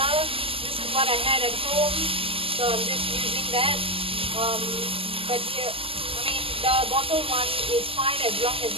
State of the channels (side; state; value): left; late; 0.26 ms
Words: This is what I had at home, so I'm just using that. But here, I mean, the bottle one is fine as long as